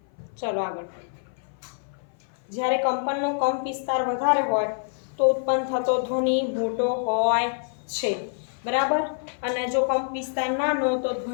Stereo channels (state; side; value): silent; right; 57 dB below the other